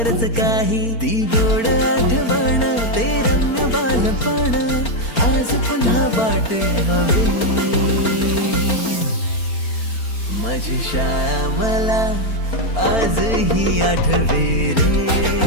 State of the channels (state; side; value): late; right; 4.4 ms